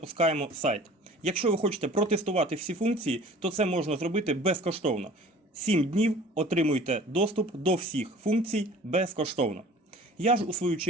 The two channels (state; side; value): normal; both; correlation 0.46